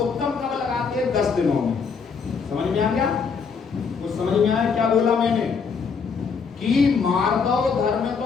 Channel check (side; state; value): right; quieter; 5.6 dB